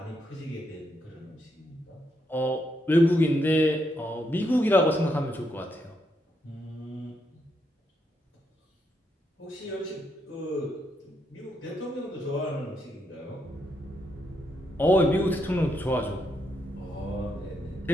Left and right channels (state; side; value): normal; both; correlation 0.79